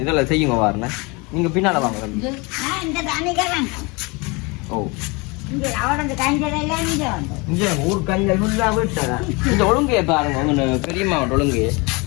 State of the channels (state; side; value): quieter; right; 27.5 dB